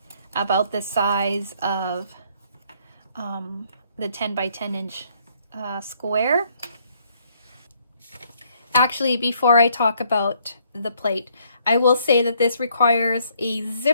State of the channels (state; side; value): inverted; both; correlation -0.67